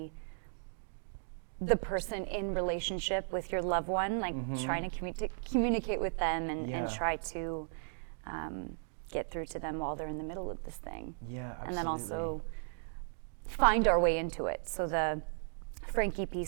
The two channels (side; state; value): left; silent; digital silence